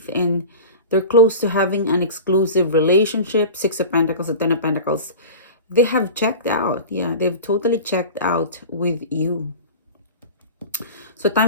and they're close to having an exclusive relationship. 6 of Pentacles and 10 of Pentacles. They have checked out. Yeah, they've totally checked out with you. So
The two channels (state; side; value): inverted; both; correlation -0.34